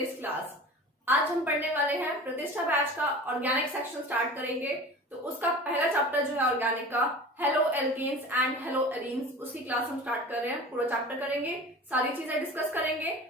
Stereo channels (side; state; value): both; normal; correlation 0.37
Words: class. आज हम पढ़ने वाले हैं प्रतिष्ठा बैच का ऑर्गेनिक सेक्शन स्टार्ट करेंगे। तो उसका पहला चैप्टर जो है ऑर्गेनिक का, haloalkanes and haloarenes, उसकी क्लास हम स्टार्ट कर रहे हैं। पूरा चैप्टर करेंगे, सारी चीजें डिस्कस करेंगे